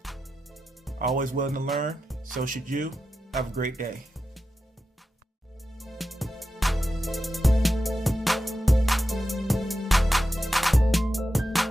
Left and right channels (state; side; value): normal; both; correlation 0.90